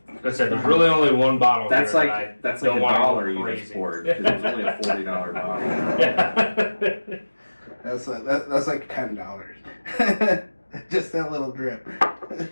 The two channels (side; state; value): both; inverted; correlation -1.00